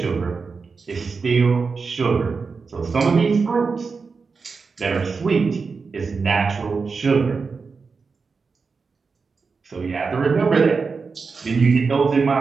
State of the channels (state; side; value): quieter; left; 4.8 dB